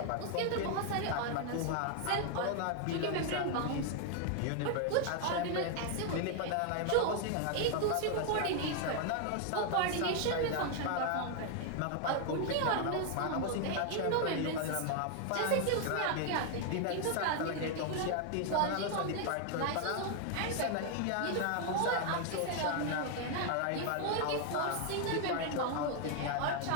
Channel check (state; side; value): different; both; correlation 0.00